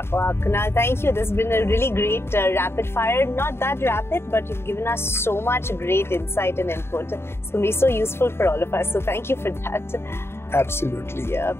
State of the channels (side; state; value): right; late; 0.12 ms